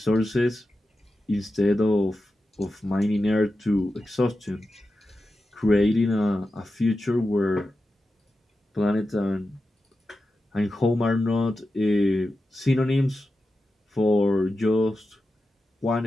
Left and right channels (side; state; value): both; normal; correlation 0.91